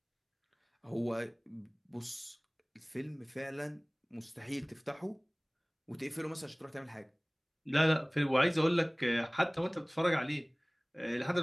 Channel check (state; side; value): identical; both; correlation 1.00